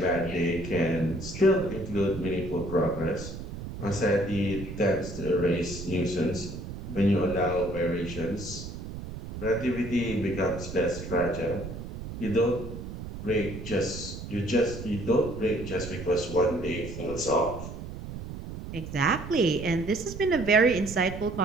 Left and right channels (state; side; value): noise; right; rumble, 9 dB below the sound